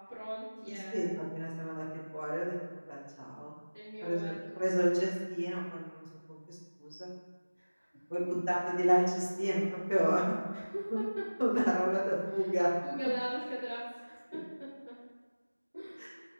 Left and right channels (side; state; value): both; inverted; correlation -1.00